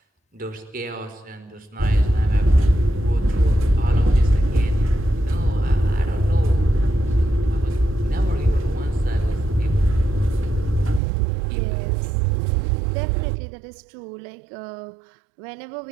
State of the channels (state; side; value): drops out; left; at 11.0 s